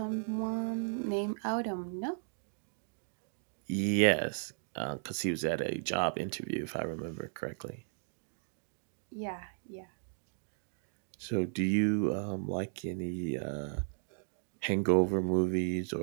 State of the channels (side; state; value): left; silent; digital silence